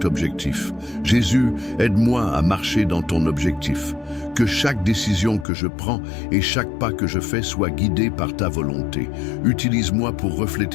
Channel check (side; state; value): right; drops out; at 5.5 s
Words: objectif. Jésus, aide-moi à marcher dans ton objectif. Que chaque décision que je prends et chaque pas que je fais soit guidé par ta volonté. Utilise-moi pour